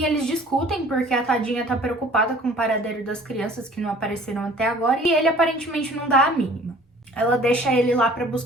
eles discutem porque a tadinha tá preocupada com o paradeiro das crianças que não apareceram até agora e ele aparentemente não dá a mínima. Ela deixa ele lá pra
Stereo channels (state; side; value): normal; both; correlation 0.50